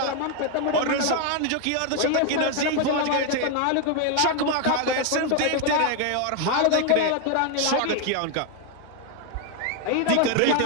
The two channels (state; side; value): different; both; correlation 0.01